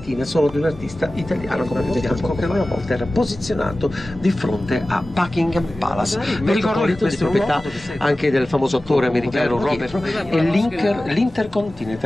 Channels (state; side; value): normal; both; correlation 0.96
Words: sono di un artista italiano come vediamo, che una volta era posizionato di fronte a Buckingham Palace. Vi ricordo che questa è proprietà anche del famoso attore americano Robert e